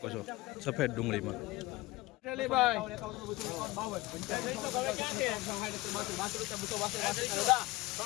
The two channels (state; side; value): quieter; right; 20.5 dB